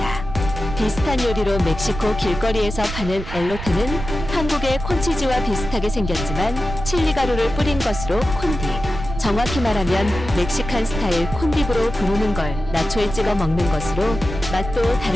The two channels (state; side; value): noise; right; rumble, 8 dB below the sound